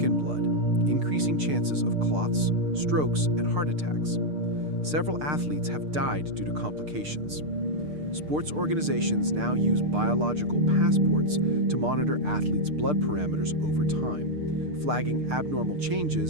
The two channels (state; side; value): late; left; 6.6 ms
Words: blood, increasing chances of clots, strokes, and heart attacks. Several athletes have died due to complications. Sports organizations now use biological passports to monitor athletes' blood parameters over time, flagging abnormal